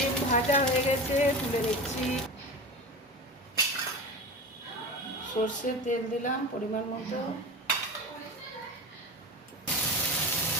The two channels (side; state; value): both; normal; correlation 0.28